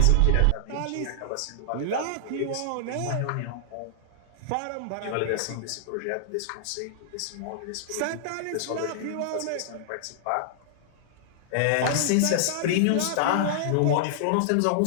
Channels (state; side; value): different; both; correlation -0.01